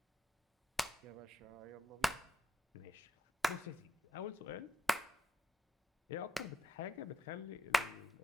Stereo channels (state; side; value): normal; both; correlation 0.81